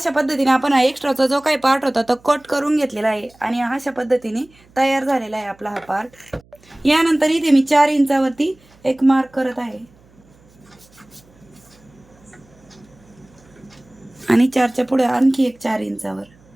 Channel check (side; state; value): right; noise; hum, 29 dB below the sound